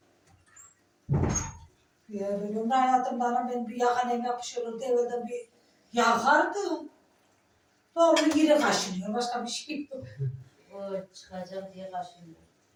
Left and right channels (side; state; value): both; identical; correlation 1.00